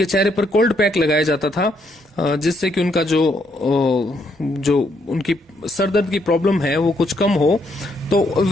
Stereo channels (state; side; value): normal; both; correlation 0.74